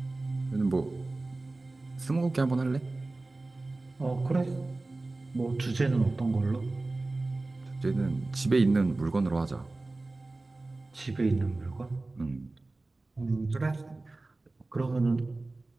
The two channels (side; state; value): left; quieter; 3.1 dB